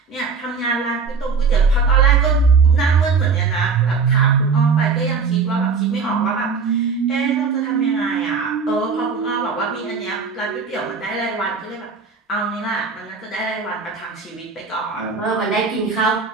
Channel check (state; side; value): quieter; left; 5.1 dB